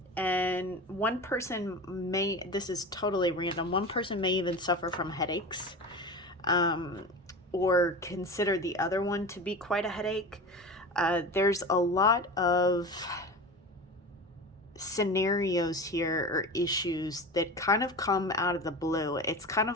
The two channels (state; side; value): normal; both; correlation 0.30